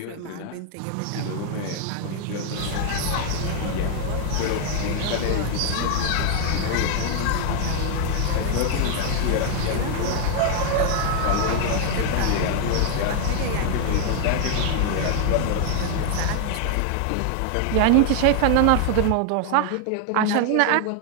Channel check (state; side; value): different; both; correlation 0.00